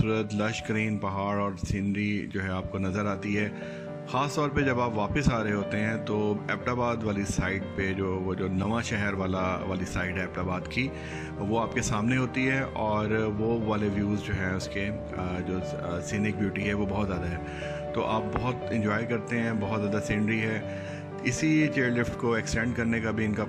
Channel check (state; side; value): identical; both; correlation 1.00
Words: लश ग्रीन पहाड़ और सीनरी जो है आपको नज़र आती है। ख़ास तौर पे जब आप वापस आ रहे होते हैं तो एबटाबाद वाली साइड पे वो जो नवा शहर वाली साइड है एबटाबाद की, वो आपके सामने होती है और वो वाले व्यूज़ जो हैं उसके जो सीनिक ब्यूटी है वो बहुत ज़्यादा है। तो आप बहुत इंजॉय करते हैं, बहुत ज़्यादा सीनरी है। इसी चेयर लिफ्ट को एक्सटेंड करने का भी इनका